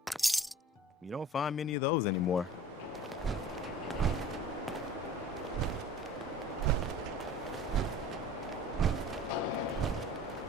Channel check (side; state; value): both; normal; correlation 0.43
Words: You don't find many of those anymore.